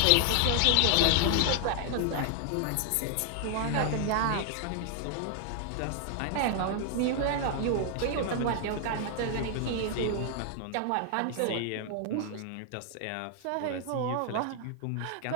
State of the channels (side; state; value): both; different; correlation 0.00